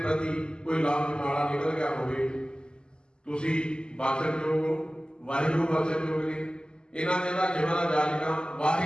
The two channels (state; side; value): late; right; 0.047 ms